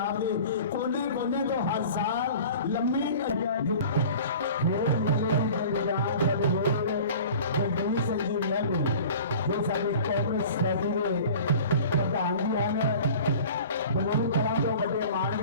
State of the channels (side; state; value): both; inverted; correlation -0.42